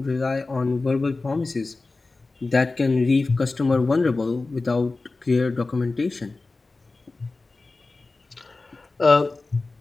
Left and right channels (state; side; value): quieter; right; 3.5 dB